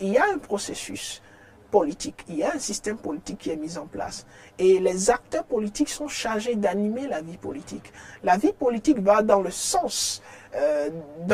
Il y a un processus politique, il y a un système politique qui est mis en place. Et les acteurs politiques sont chargés d'animer la vie politique. La vie politique va dans le sens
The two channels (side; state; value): both; identical; correlation 1.00